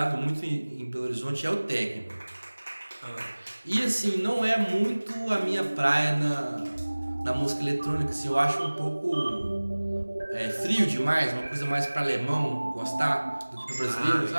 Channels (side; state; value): both; inverted; correlation -1.00